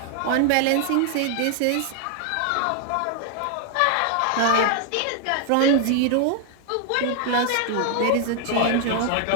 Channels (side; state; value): both; different; correlation 0.00